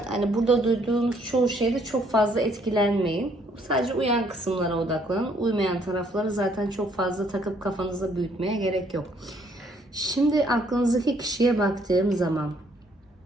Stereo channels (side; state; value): both; normal; correlation 0.66